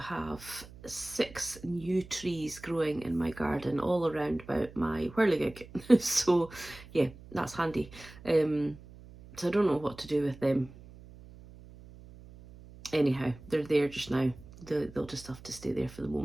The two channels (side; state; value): right; noise; hum, 19 dB below the sound